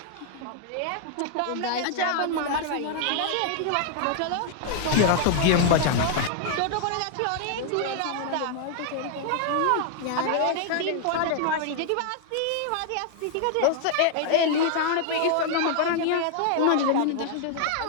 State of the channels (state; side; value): different; both; correlation 0.00